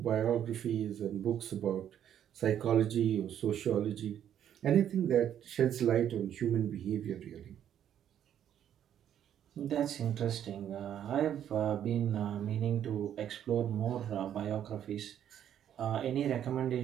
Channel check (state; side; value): quieter; left; 10.0 dB